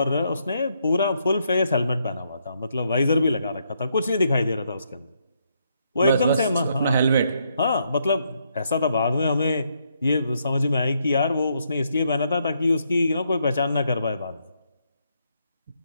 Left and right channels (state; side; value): inverted; both; correlation -0.76